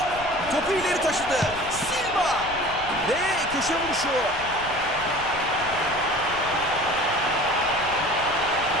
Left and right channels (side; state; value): left; noise; rumble, 15 dB below the sound